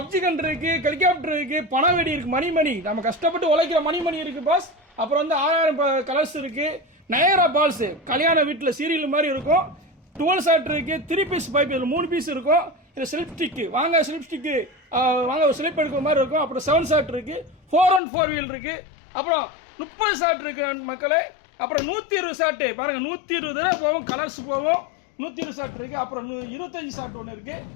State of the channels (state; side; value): drops out; right; at 18.0 s